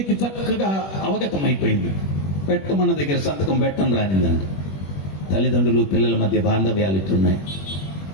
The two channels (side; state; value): right; late; 21 ms